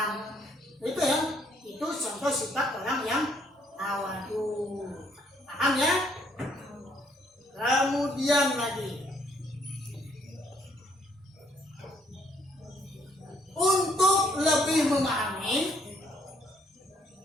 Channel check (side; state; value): both; normal; correlation 0.67